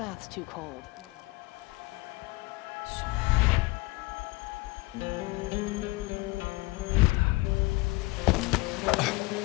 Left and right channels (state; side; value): quieter; right; 22.8 dB